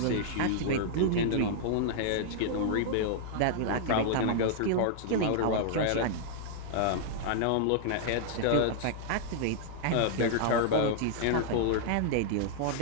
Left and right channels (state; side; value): different; both; correlation -0.01